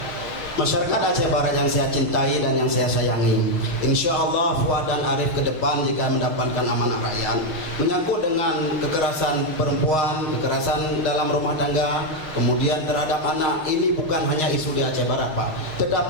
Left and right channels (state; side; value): late; left; 6.5 ms